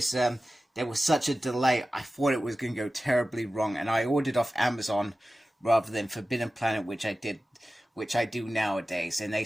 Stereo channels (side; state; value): both; normal; correlation 0.95